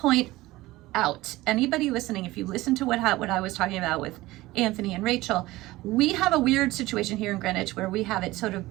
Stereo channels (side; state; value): left; quieter; 18.5 dB